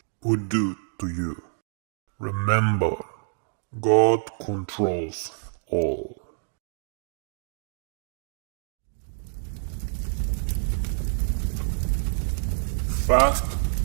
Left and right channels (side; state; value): left; silent; 60 dB below the other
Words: would do to you. Remember, God controls all. Fast